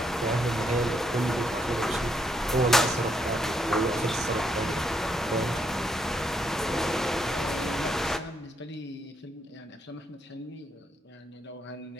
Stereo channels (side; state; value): both; normal; correlation 0.76